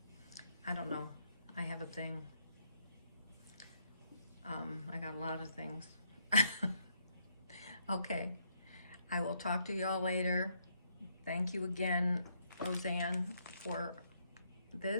I don't know. I have a thing. I got a lot of things. Okay, I will talk to y'all later. Thank you again, Roseanne, for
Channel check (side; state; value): both; inverted; correlation -0.74